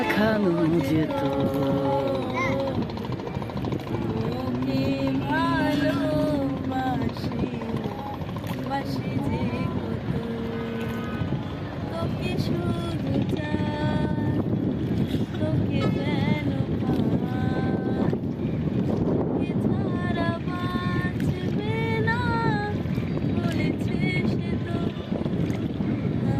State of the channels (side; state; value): both; identical; correlation 1.00